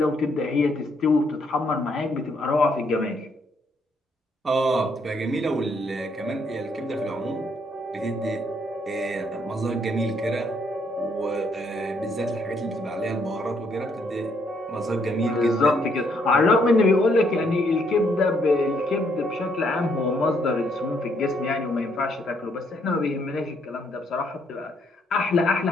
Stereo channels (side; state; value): both; normal; correlation 0.71